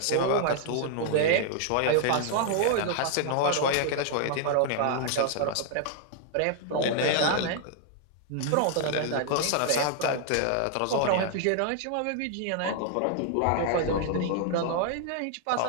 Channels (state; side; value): different; both; correlation 0.00